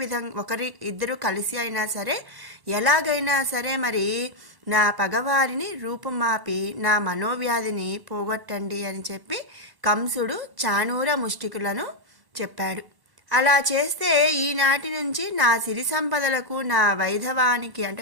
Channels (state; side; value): late; left; 1.1 ms